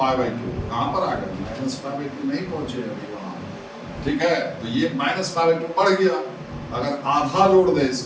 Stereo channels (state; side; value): identical; both; correlation 1.00